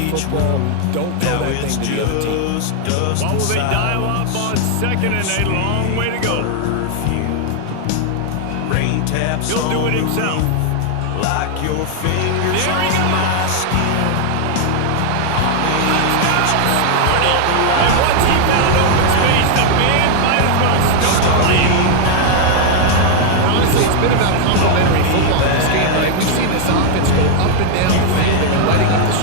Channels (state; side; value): different; both; correlation 0.00